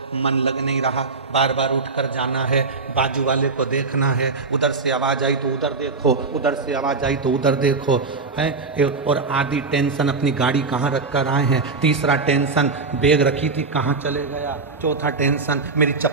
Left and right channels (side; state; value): left; quieter; 4.1 dB